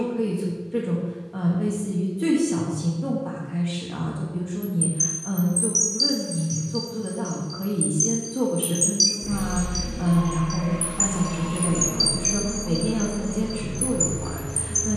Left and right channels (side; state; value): both; identical; correlation 1.00